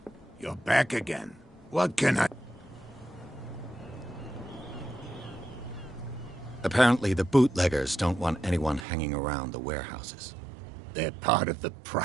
You're back again. What can I... Apparently the bootleggers don't want anyone hanging around the warehouses. They're part of the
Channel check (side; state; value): left; drops out; at 8.8 s